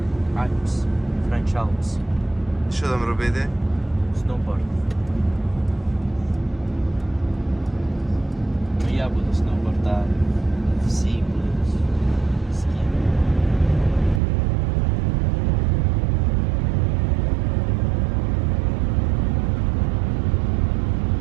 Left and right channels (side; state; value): left; drops out; at 14.2 s